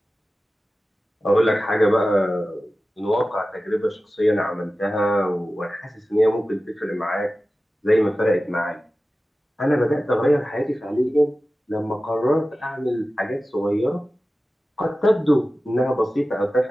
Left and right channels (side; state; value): both; normal; correlation 0.95